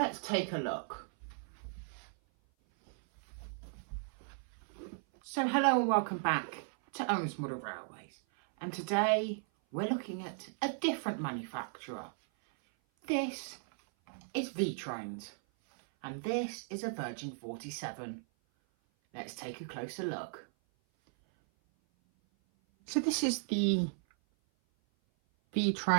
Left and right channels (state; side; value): silent; left; 54 dB below the other